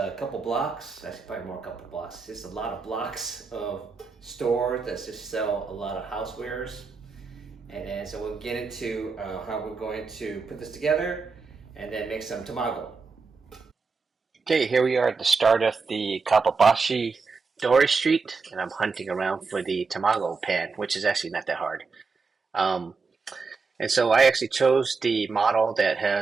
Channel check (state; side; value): quieter; left; 4.6 dB